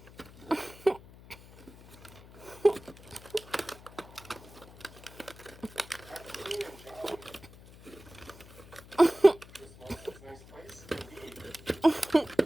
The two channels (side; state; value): left; noise; hum, 20 dB below the sound